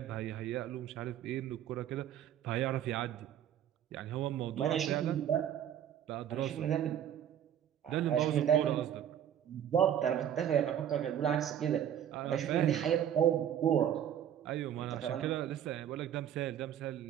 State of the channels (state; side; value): quieter; left; 10.0 dB